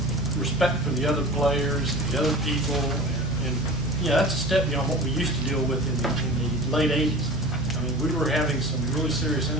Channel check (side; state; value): both; normal; correlation 0.38